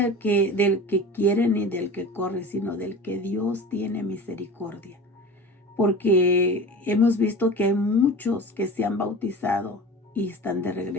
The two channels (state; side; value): normal; both; correlation 0.35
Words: que quiere ni del que corre, sino del que Dios tiene misericordia. Porque hemos visto que hay muchos que se han bautizado y están de